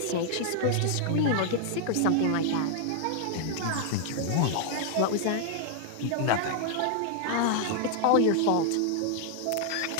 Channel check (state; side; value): different; both; correlation 0.00